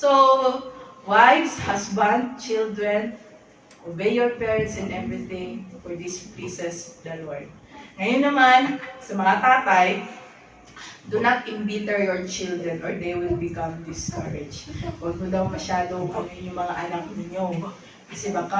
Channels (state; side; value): identical; both; correlation 1.00